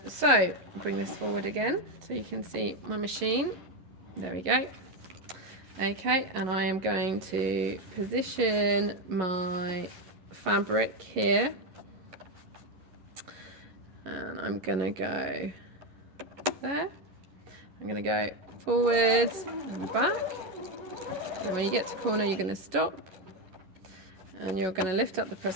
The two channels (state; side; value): late; left; 11 ms